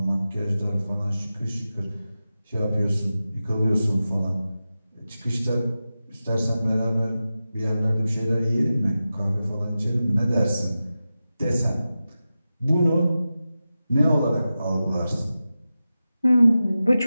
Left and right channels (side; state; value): both; inverted; correlation -0.93